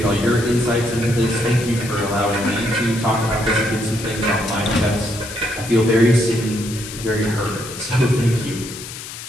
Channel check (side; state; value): left; noise; hiss, 11 dB below the sound